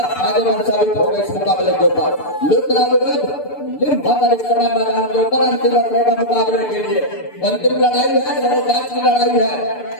फायदेमंद साबित होगा इस मुकाबले के ऊपर। इस समय मैदान के ऊपर अंतिम मुकाबले के लिए अंतिम लड़ाई है, सर्वोच्च की लड़ाई है,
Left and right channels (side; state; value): right; late; 6.8 ms